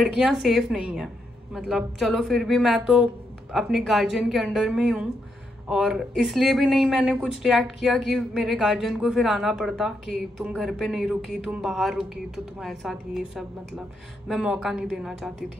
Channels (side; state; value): both; normal; correlation 0.80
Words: सेफ नहीं है। मतलब चलो फिर भी मैं तो अपने गार्जियन के अंडर में ही हूँ, और इसलिए भी नहीं मैंने कुछ रिएक्ट किया कि मेरे गार्जियन को फिर आना पड़ता कि तुम घर पे नहीं रुकी, तुम बाहर रुकी, तो तुम्हारे साथ ये सब, मतलब मैं मौका नहीं देना चाहती